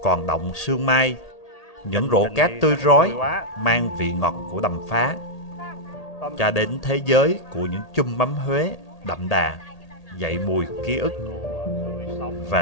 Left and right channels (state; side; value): late; right; 1.8 ms